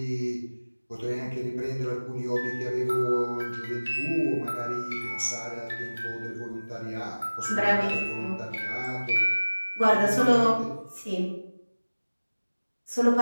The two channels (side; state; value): both; inverted; correlation -1.00